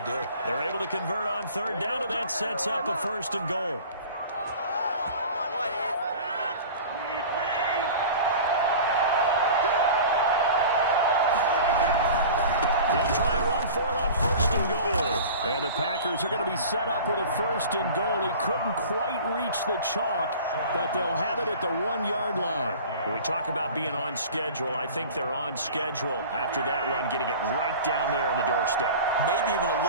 They're able to convert on 3rd down, and that sets up a 1st and goal. They'll try and run for it on 1st and goal. And the Packers are going to be set up with a 1st and goal. He couldn't quite reach the chalk, but they'll have it at the 1-yard line. When we talk about being on schedule, I think they're on schedule after that run, getting it right down there on the doorstep. Maybe even a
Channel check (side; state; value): both; inverted; correlation -0.39